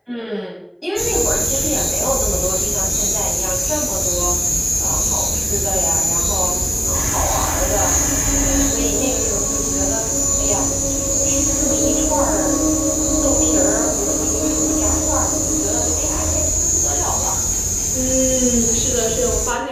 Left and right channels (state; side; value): identical; both; correlation 1.00